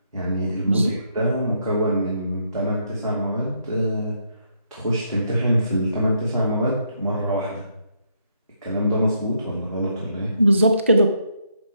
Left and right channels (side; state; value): both; inverted; correlation -0.75